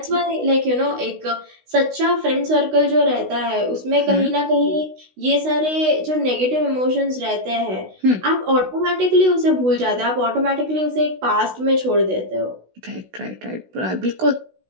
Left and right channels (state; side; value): late; left; 16 ms